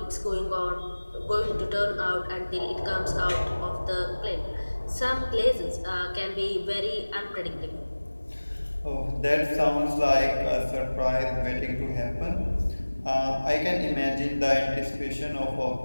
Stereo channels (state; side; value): inverted; both; correlation -1.00